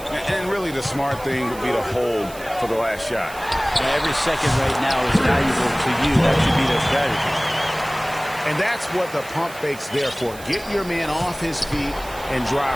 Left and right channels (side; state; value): right; noise; hiss, 18 dB below the sound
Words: And really the smart thing would be to hold for the last shot. And every second right now is valuable to you. That should be their strategy. And that's what the pump fake's there for. Get your man off his feet and